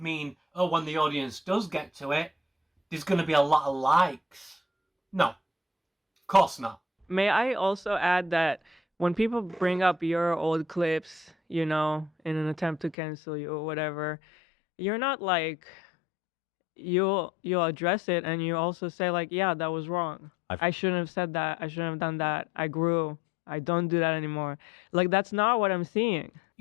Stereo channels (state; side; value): drops out; right; at 13.0 s